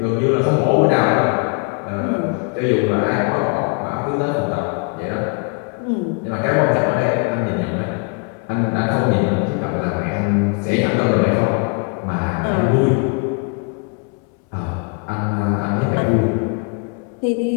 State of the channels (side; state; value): right; quieter; 37.0 dB